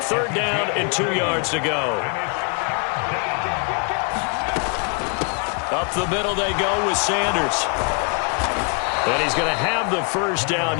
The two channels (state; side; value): quieter; right; 38.6 dB